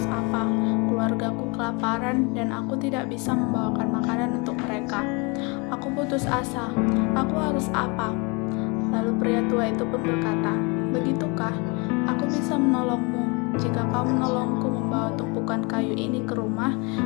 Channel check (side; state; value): right; quieter; 29.9 dB